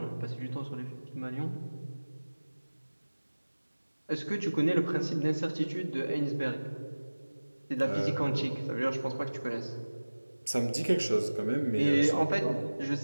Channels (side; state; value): both; inverted; correlation -1.00